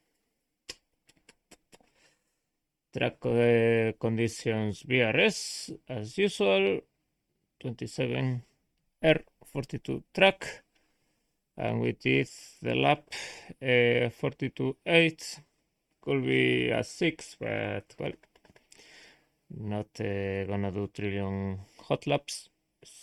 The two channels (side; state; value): both; identical; correlation 1.00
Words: Track conditions BRS as usual, 27 R42 track, and we did the lap 42.8. Could be a 6, but well, not gonna do trillion hot laps.